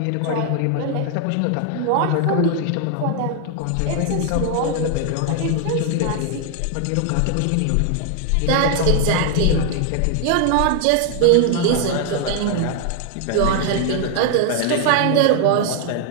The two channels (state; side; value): different; both; correlation 0.00